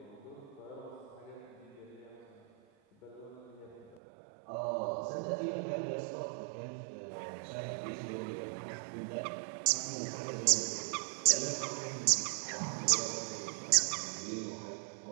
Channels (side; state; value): left; drops out; at 4.0 s